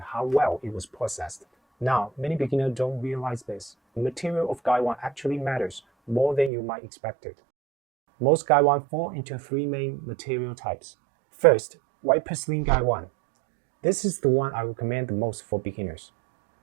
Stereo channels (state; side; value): drops out; left; at 6.5 s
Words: how well it was processed. Now, many beginners don't realize this. The material of Gaiwan actually matters more than you might expect it. Most Gaiwan fall into three main material types. First, white porcelain Gaiwan. This is the one I recommend the most for beginners.